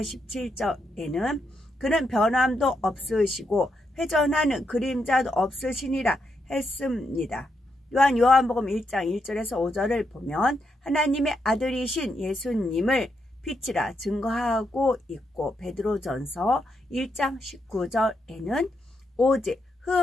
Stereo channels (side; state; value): both; normal; correlation 0.81